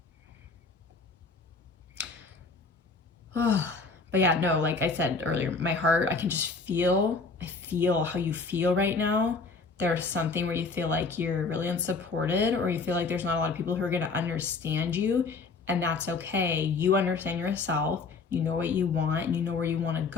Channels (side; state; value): right; quieter; 4.3 dB